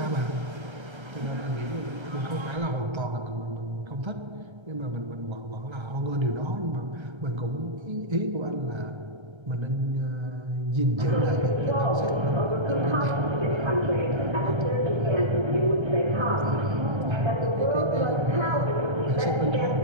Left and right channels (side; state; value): left; late; 1.3 ms